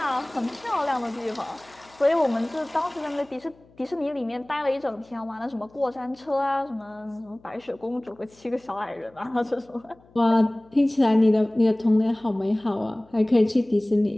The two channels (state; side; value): noise; left; hum, 29 dB below the sound